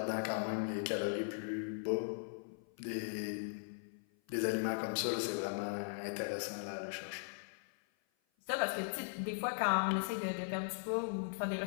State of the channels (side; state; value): right; silent; 52 dB below the other